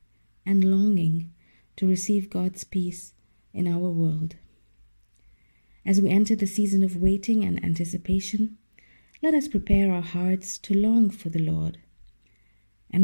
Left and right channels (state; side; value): inverted; both; correlation -1.00